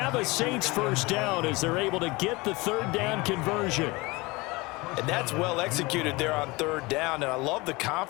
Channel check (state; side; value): quieter; right; 23.7 dB